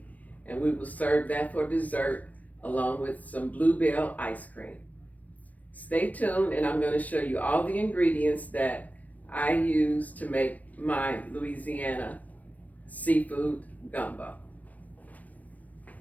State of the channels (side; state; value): right; late; 0.073 ms